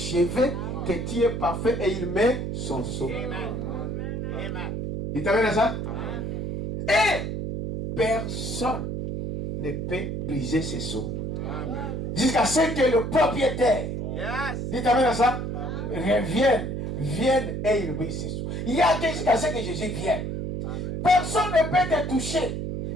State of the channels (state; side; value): noise; right; hum, 3 dB below the sound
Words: que tu es parfait, et il met son sceau. Il t'amène à ça? Et personne ne peut briser ses sceaux. Jusqu'à ce que le propriétaire, il t'amène à ça? Vienne et il brise ses sceaux. Il y a que jusqu'à ce que Jésus vienne. Personne ne peut te toucher.